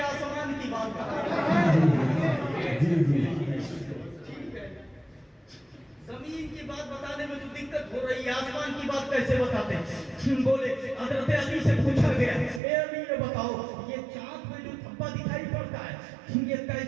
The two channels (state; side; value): drops out; left; at 12.6 s